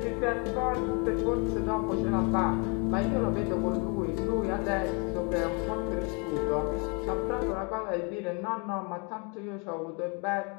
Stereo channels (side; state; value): right; quieter; 33.5 dB